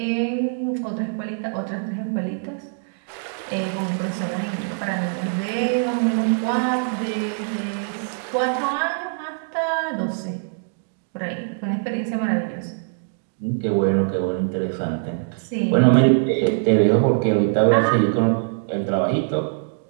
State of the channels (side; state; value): left; silent; digital silence